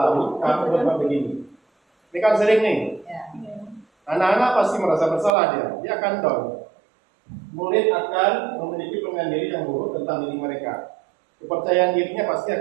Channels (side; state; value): left; drops out; at 5.3 s